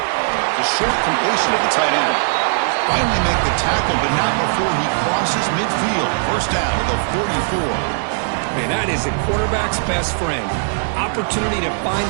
The short completion of the tight end. Finally make the tackle, but not before he crosses midfield. First down at the 44. Man, that is a quarterback's best friend. Opportunity to find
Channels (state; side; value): silent; left; digital silence